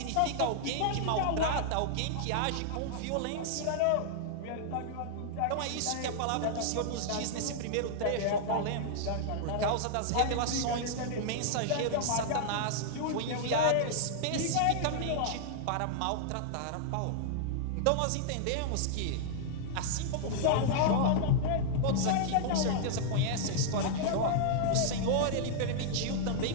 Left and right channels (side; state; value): both; different; correlation -0.01